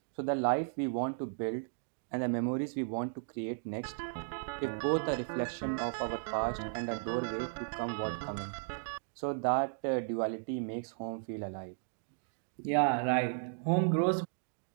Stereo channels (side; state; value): left; silent; digital silence